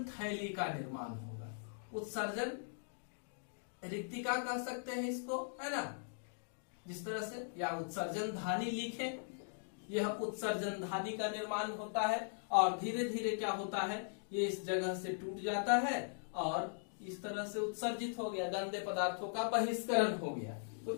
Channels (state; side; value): silent; right; digital silence